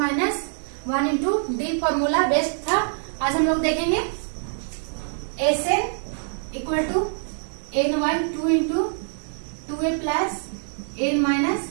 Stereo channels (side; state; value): left; silent; digital silence